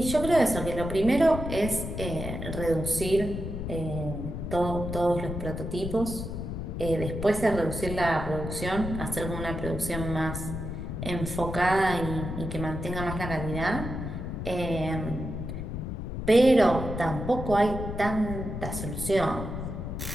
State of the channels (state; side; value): noise; left; rumble, 5 dB below the sound